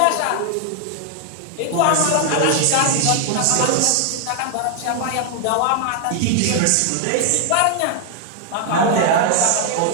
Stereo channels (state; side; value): different; both; correlation 0.00